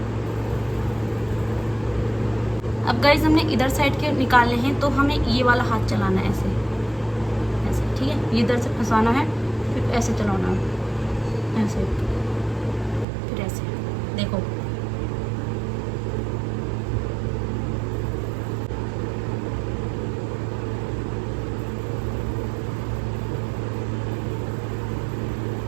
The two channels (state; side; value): drops out; left; at 13.1 s